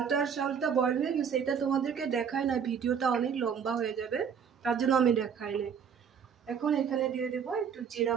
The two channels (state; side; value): quieter; left; 7.2 dB